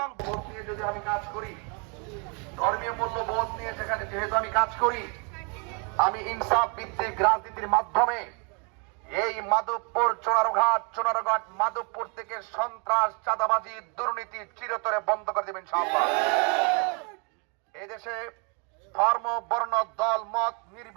বোধ নিয়ে যদি আমি কাজ করি, ধর্মীয় মূল্যবোধ নিয়ে যেহেতু আমি কাজ করি, আমি ইনসাফ ভিত্তিক রাজনীতির মাধ্যমে এই মাধবপুর চোনারঘাট মাধবপুর থেকে সন্ত্রাস, চাঁদাবাজি, দুর্নীতি চিরতরে বন্ধ করে দেবেন ইনশাআল্লাহ। এই দেশে ধর্ম, বর্ণ, দল, মত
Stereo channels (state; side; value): quieter; left; 35.4 dB